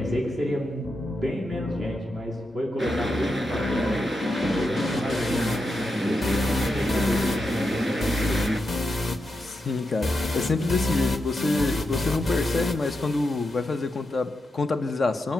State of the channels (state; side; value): normal; both; correlation 0.87